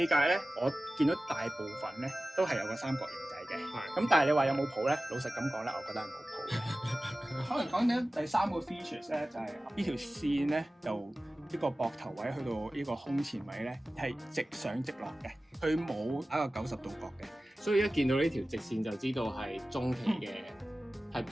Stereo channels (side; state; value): both; normal; correlation 0.96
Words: 解咧，我見到大部分咧都係有個三角形仔嘅。咁但係你話有冇譜咧？老實咁講咧，我覺得係冇譜嘅。可能講緊第三個 features 咧，就係呢條線咧，由呢個膊頭位去到呢個胸前位咧，係直上直落嘅，佢冇打個90度角嘅。所以一見到呢條直線就知道係中期嘅 Type